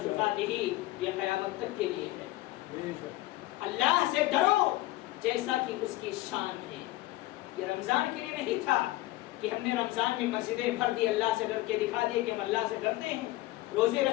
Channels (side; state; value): right; quieter; 17.8 dB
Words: تقاتہ یہ قیامت تک کے لیے ہے۔ اللہ سے ڈرو جیسا کہ اس کی شان ہے۔ یہ رمضان کے لیے نہیں تھا کہ ہم نے رمضان میں مسجدیں بھر دی، اللہ سے ڈر کے دکھا دیے کہ ہم اللہ سے ڈرتے ہیں، روزے